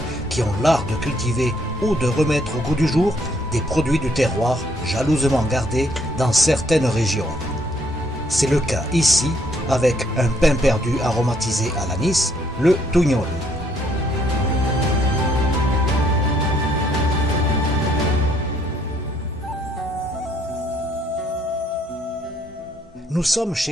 qui ont l'art de cultiver ou de remettre au goût du jour des produits du terroir jalousement gardés dans certaines régions. C'est le cas ici avec un pain perdu aromatisé à l'anis, le tougnol. Nous sommes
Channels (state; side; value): normal; both; correlation 0.68